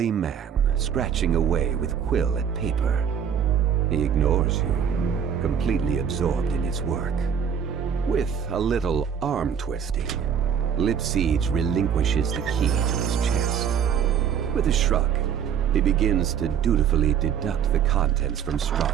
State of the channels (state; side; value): quieter; left; 8.0 dB